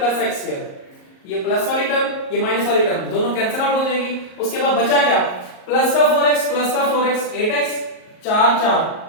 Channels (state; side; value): late; right; 38 ms